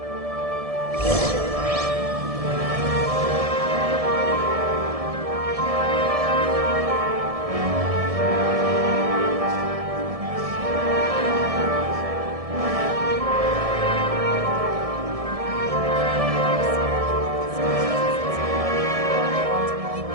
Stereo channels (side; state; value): left; late; 1.7 ms